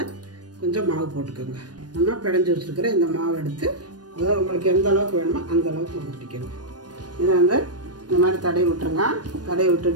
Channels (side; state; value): left; late; 0.69 ms